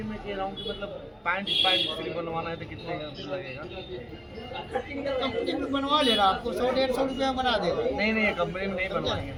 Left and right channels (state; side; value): identical; both; correlation 1.00